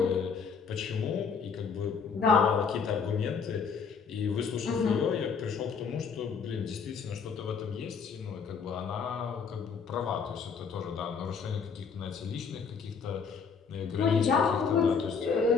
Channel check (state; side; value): quieter; right; 5.9 dB